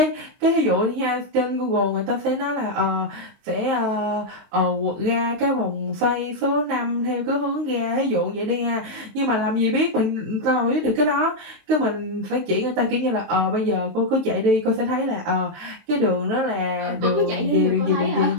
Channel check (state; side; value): late; left; 23 ms